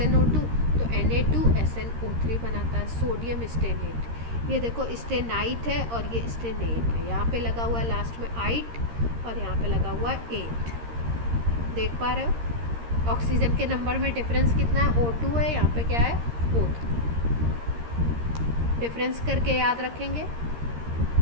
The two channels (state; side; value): late; left; 13 ms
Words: तो Na2SnO3 बनाता है, सोडियम स्टेनेट। ये देखो स्टेनाइट है और ये स्टेनेट है, यहाँ पे लगा हुआ है लास्ट में आइट और यहाँ पे लगा हुआ है 8। देख पा रहे हो ऑक्सीजन के नंबर में डिफरेंस कितना है, O2 है, यहाँ पे क्या है O3। डिफरेंस करके याद रखेंगे